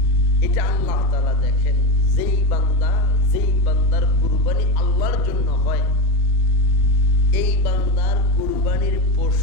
এটা আল্লাহ তাআলা দেখেন। যেই বান্দার কুরবানি আল্লাহর জন্য হয়, এই বান্দার কুরবানির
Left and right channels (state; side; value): normal; both; correlation 0.19